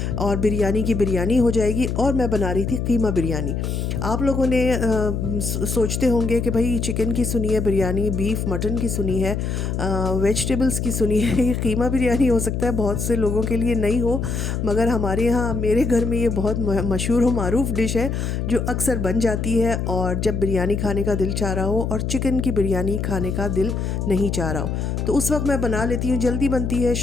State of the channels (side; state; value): left; noise; hum, 2 dB below the sound